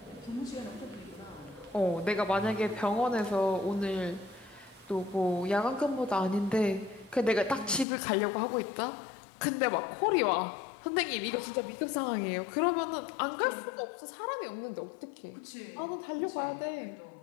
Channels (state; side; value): drops out; right; at 7.9 s